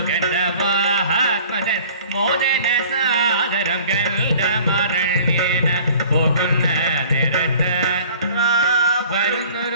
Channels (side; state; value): both; inverted; correlation -0.48